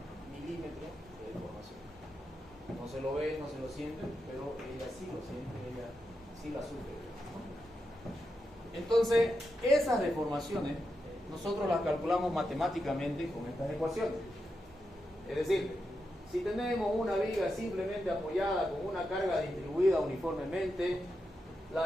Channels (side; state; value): both; normal; correlation 0.87